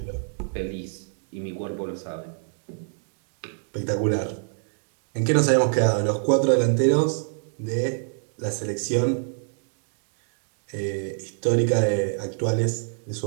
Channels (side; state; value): left; silent; digital silence